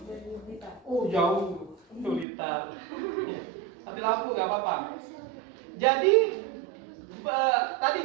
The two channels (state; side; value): drops out; left; at 2.2 s